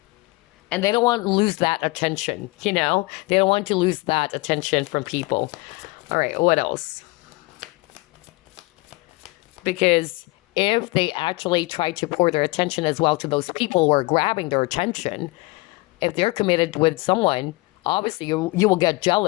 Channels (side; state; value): right; quieter; 24.1 dB